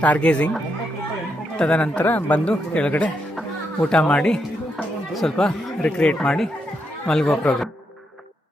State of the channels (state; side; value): normal; both; correlation 0.81